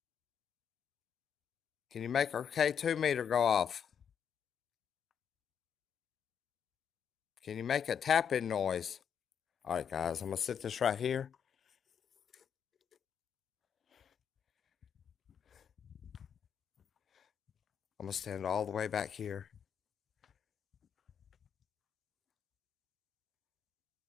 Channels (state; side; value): quieter; right; 7.8 dB